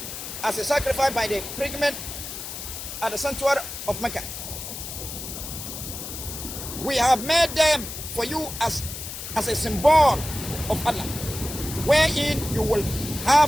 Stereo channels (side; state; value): left; noise; hiss, 8 dB below the sound